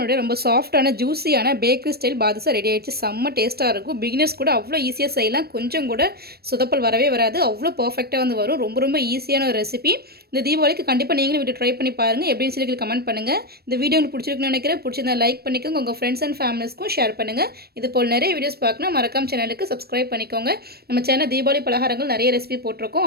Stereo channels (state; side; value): late; left; 0.46 ms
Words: ரொம்ப சாஃப்டான ஜூஸியான பேக்கரி ஸ்டைல் பாதுஷா ரெடி ஆகிடுச்சு. செம்ம டேஸ்ட்டாக இருக்கும். பிகினர்ஸ் கூட அவ்வளோ ஈஸியாக செய்யலாம். கொஞ்சம் கூட சொதப்பல் வரவே வராது. அவ்வளோ பர்ஃபெக்டாக வந்து வரும். ரொம்ப ஈஸியான ஒரு ரெசிபி. இந்த தீபாவளிக்கு கண்டிப்பாக நீங்களும் வீட்டு ட்ரை பண்ணி பாருங்கள். எப்படின்னு சொல்லி கமெண்ட் பண்ணுங்கள். இந்த வீடியோ உங்களுக்கு பிடிச்சிருக்குன்னு நினைக்கிறேன். பிடிச்சிருந்தா லைக் பண்ணிக்கோங்க. உங்கள் ஃப்ரெண்ட்ஸ் அண்ட் ஃபேமிலிஸ்க்கும் ஷேர் பண்ணுங்கள். இது போல் நிறைய வீடியோஸ் பார்க்கணும். மறக்காம சேனலுக்கு சப்ஸ்கிரைப் பண்ணிக்கோங்க. நம்ம சேனல் தீபாவளி பலகாரங்கள் நிறைய ரெசிபி